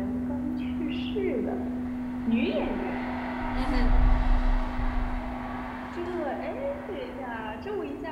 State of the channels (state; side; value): identical; both; correlation 1.00